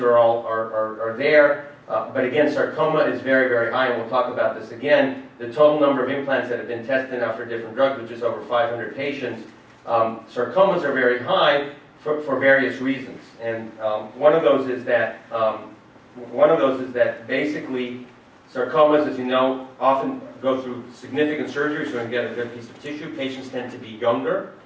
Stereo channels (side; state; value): both; identical; correlation 1.00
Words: are there. But again, sarcoma is very, very high, and we'll talk about this again. The total number of implants that have been tested now for different drugs, which is over 500 patients, sarcomas are very high for various reasons. And one of those is that basically sarcomas, as you know, often go through significant surgery, so we get a good piece of tissue. Patients tend to be younger.